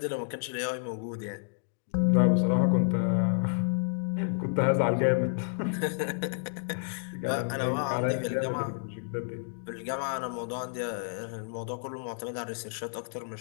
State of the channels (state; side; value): silent; right; digital silence